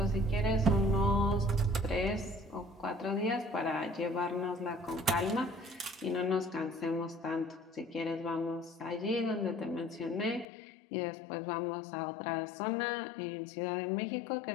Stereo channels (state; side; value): drops out; right; at 10.5 s